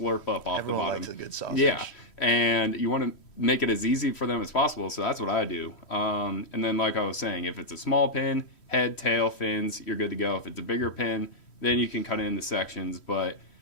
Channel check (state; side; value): late; right; 3.1 ms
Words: up off the bottom. Likes a good sausage. Yeah, and you want to make it as easy for them as possible, so that's what I do. And then like I was saying, if it's a small pin, head, tail, fins, you're good to go. If it's a bigger pin, then you can cut it into sections. But